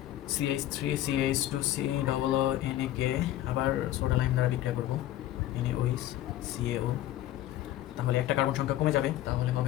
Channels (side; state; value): right; quieter; 13.9 dB